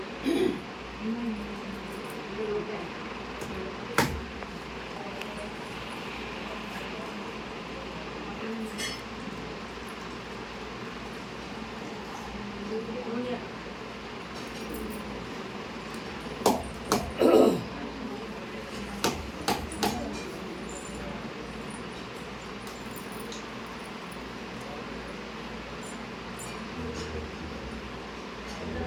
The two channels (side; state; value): both; identical; correlation 1.00